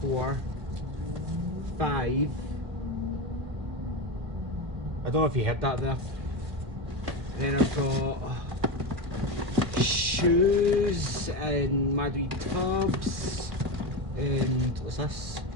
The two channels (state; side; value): late; left; 2.4 ms